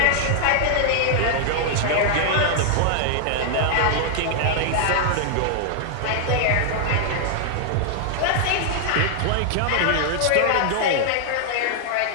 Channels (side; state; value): both; different; correlation 0.00